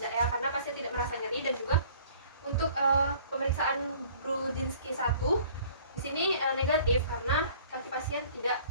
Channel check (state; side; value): inverted; both; correlation -0.53